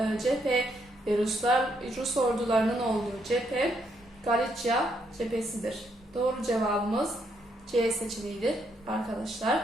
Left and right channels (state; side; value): normal; both; correlation 0.75